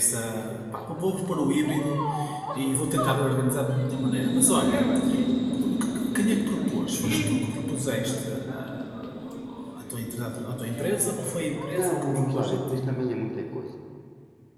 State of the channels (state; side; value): identical; both; correlation 1.00